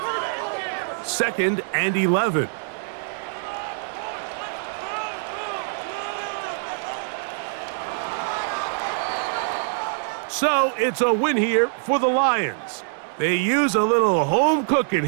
Second and 11. So it's a win here for the Lions. They use a little home cooking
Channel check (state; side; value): silent; left; digital silence